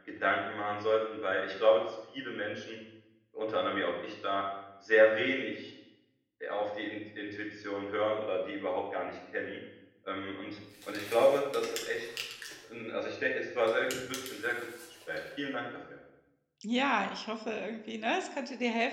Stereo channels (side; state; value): both; identical; correlation 1.00